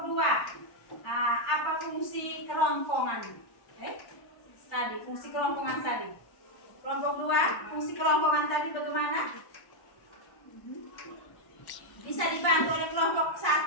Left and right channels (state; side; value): late; right; 1.1 ms